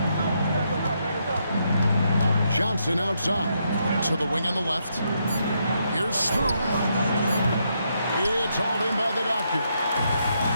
Johnson outside to the wing on the left. Here's Smooth. It's hauled in by the Doctor.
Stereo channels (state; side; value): inverted; both; correlation -0.78